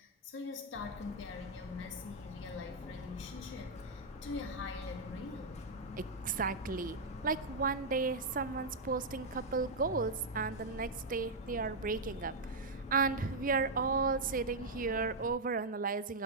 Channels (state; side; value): quieter; left; 3.1 dB